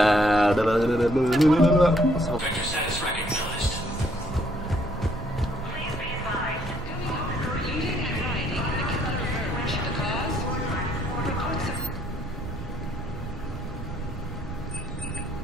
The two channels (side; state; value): right; noise; rumble, 10 dB below the sound